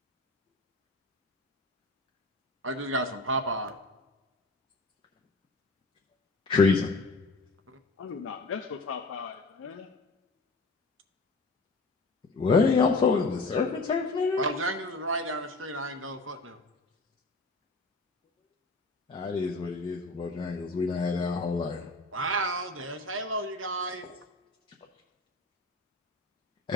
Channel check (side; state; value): right; quieter; 3.1 dB